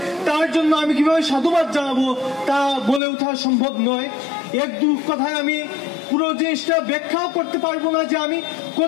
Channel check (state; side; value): drops out; right; at 3.0 s